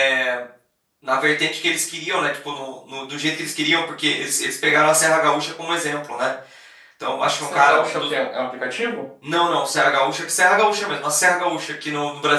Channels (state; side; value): identical; both; correlation 1.00